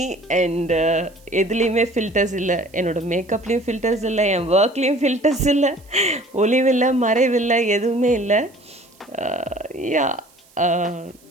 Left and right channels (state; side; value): noise; right; hiss, 29 dB below the sound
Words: And எதுலேயுமே ஃபில்டர்ஸ் இல்லை, என்னோடய மேக்கப்லேயும் ஃபில்டர்ஸ் இல்லை, என் ஒர்க்லேயும் ஃபில்டர்ஸ் இல்லை, ஒளிவில்லை மறைவில்லை, எதுவுமே இல்லை. யா,